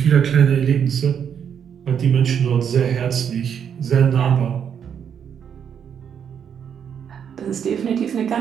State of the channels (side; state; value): left; quieter; 8.0 dB